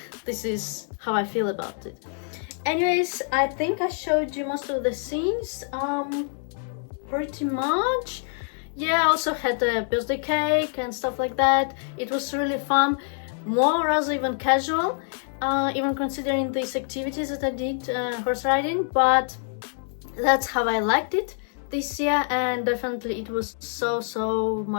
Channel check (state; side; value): silent; right; 61 dB below the other